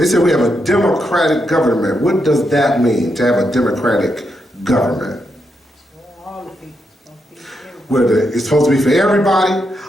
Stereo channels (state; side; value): normal; both; correlation 0.82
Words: say we have a democratic government. What does that mean, to have a democratic government? Where it's supposed to be for everybody.